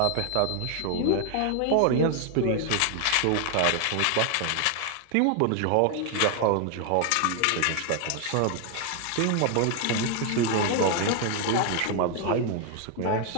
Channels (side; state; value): both; different; correlation 0.00